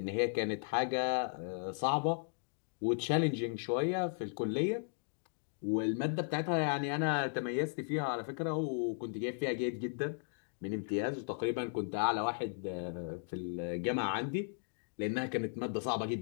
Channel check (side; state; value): right; silent; digital silence